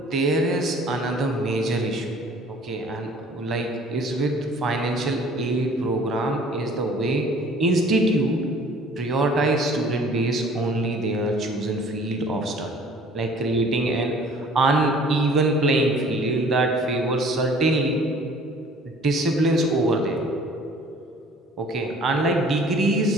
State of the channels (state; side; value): normal; both; correlation 0.52